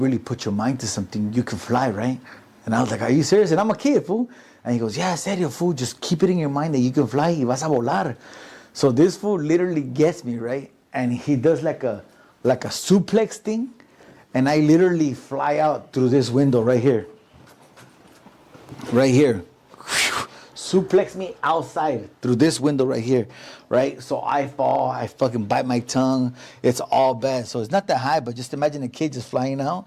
put your mind to something, you can fly, right? And I was like, are you serious? And I'm a kid, fool. And he goes, yeah, serio, fool. Just keep it in your mind that you can fly. Y vas a volar. So this fool literally gets me, right? And he does like a suplex thing. And I literally fly out through this window right here. Right here. Suplex me outside through this window right here. Right? So I fall. I fucking bite my tongue. It's all bad. So it's not that high, but just imagine a kid just flying out.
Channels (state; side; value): identical; both; correlation 1.00